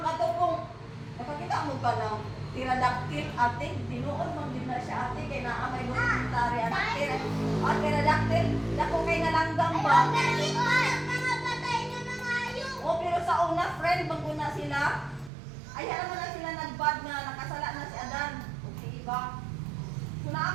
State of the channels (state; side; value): drops out; left; at 15.3 s